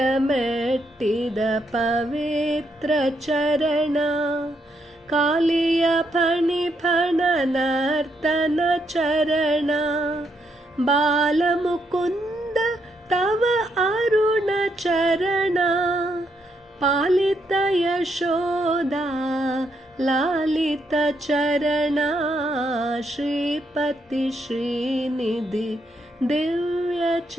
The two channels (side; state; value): both; normal; correlation 0.77